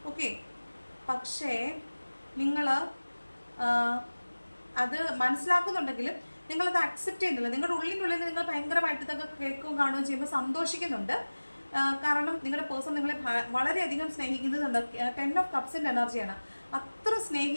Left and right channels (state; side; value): inverted; both; correlation -1.00